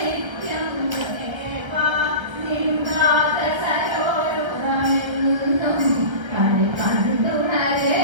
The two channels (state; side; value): late; left; 1.3 ms